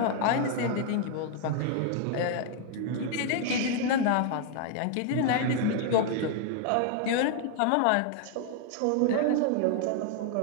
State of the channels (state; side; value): different; both; correlation 0.00